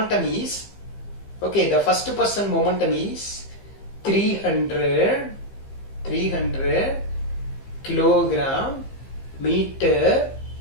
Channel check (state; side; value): late; right; 15 ms